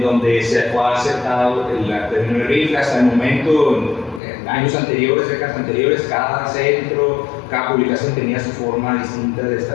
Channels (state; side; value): drops out; right; at 4.2 s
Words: donde se fue aceptado el término de RIF. Hasta el momento, en años anteriores, décadas anteriores, cada centro, cada publicación tenía su forma distinta de